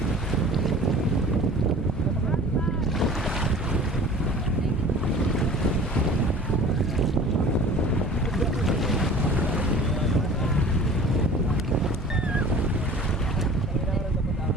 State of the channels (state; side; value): normal; both; correlation 0.44